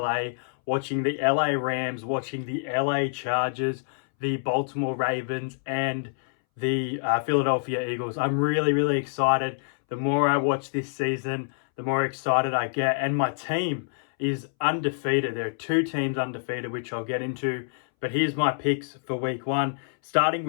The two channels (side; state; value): right; silent; 61 dB below the other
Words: watching the LA Rams, watching the LA Chargers, the Baltimore Ravens, and the Philadelphia Eagles. I'm really excited. The more I watch this season, the more excited I get. And my team is undefeated. There are 2 teams undefeated, which I'll get into. But here's my picks for week 1, starting